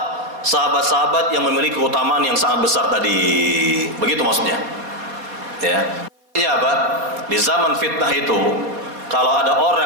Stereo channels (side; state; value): left; late; 4.2 ms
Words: sahabat-sahabat yang memiliki keutamaan yang sangat besar tadi. Begitu maksudnya. Ya. Artinya apa? Di zaman fitnah itu, kalau ada